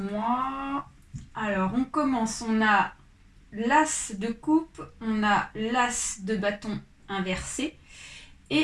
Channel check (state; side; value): identical; both; correlation 1.00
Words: Alors, on commence, on a l'as de coupe, on a l'as de bâton inversé